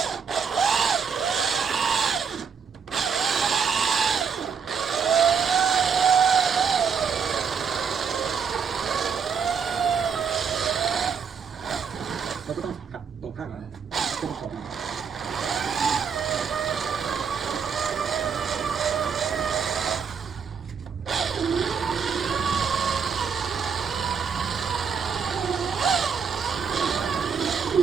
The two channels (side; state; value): left; quieter; 6.4 dB